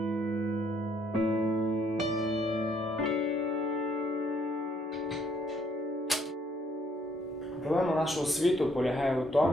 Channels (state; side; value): normal; both; correlation 0.68